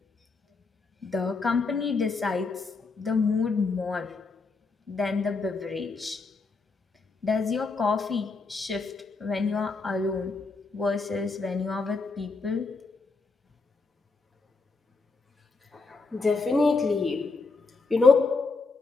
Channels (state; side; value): quieter; right; 4.1 dB